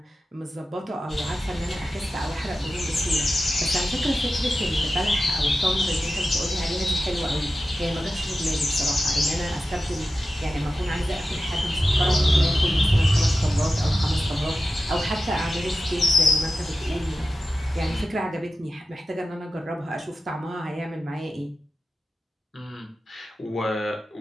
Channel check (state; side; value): normal; both; correlation 0.93